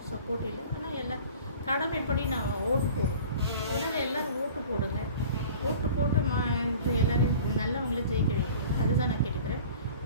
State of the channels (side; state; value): both; inverted; correlation -0.44